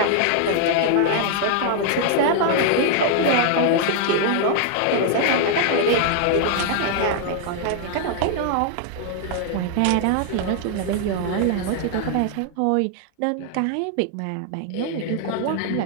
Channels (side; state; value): both; different; correlation 0.00